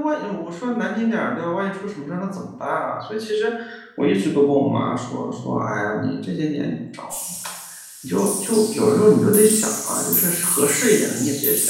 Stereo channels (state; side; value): identical; both; correlation 1.00